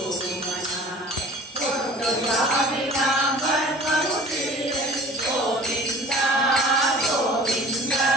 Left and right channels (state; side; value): normal; both; correlation 0.45